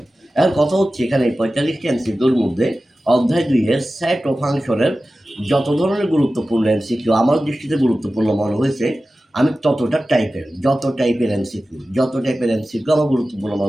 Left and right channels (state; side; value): normal; both; correlation 0.95